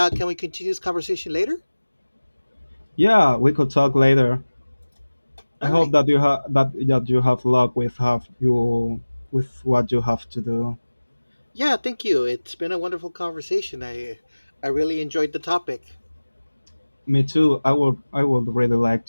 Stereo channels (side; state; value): both; inverted; correlation -1.00